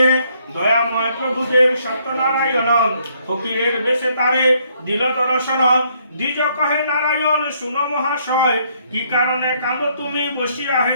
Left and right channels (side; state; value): both; inverted; correlation -0.69